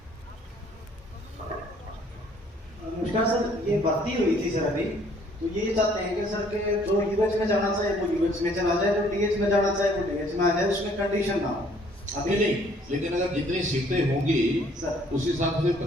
नमस्कार सर, ये भर्ती हुई थी सर अभी, तो ये चाहते हैं कि सर के जो यूएच में जाना चाहे वो यूएच में चला जाए, जो डीएच में जाना चाहे वो डीएच में आ जाए, उसमें कंडीशन ना हो। अभी नहीं, लेकिन अगर जितनी सीटें होंगी सर उस हिसाब से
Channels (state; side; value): normal; both; correlation 0.61